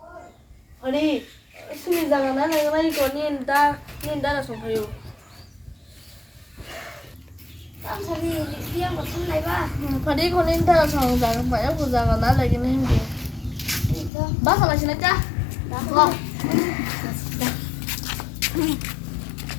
아니 수미자가 나는 이거 닌다라 송파요. 땀 소리 리안 거 탈래 봐. Phadi con nên ta sòng rằng phải áp dụng rằng nó là cái này gì? 이거 Bác là xin cha. 나.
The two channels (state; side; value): drops out; right; at 14.1 s